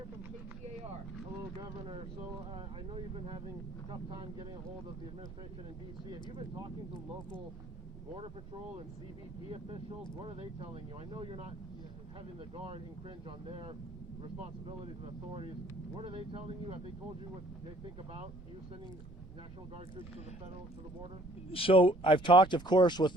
from KCAR. Hello, Governor. So I know you've been having a tough time getting a hold of the administration in D.C. Have you been talking to local Border Patrol and CBP officials? What are they telling you? I know you're not having the Guard infringe on their responsibilities and authorities. What are they telling you? Have they told you what they think about you sending National Guard troops to the border? So I've talked, of course,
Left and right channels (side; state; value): both; normal; correlation 0.59